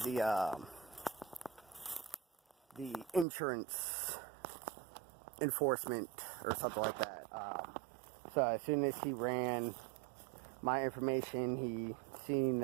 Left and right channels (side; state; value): left; drops out; at 3.2 s